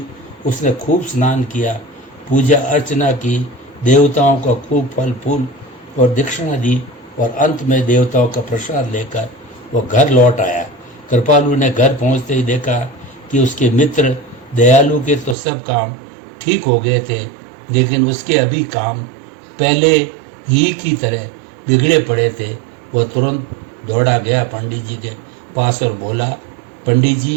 उसने खूब स्नान किया, पूजा अर्चना की, देवताओं को खूब फल फूल और दक्षिणा दी और अंत में देवताओं का प्रसाद लेकर वो घर लौट आया। कृपालु ने घर पहुंचते ही देखा कि उसके मित्र दयालु के तो सब काम ठीक हो गए थे, लेकिन उसके अभी काम पहले ही की तरह बिगड़े पड़े थे। वह तुरंत दौड़ा गया पंडित जी के पास और बोला, पंडित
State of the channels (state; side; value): drops out; left; at 15.4 s